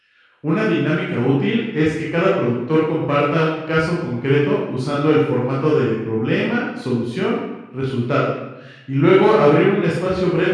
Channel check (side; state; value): both; identical; correlation 1.00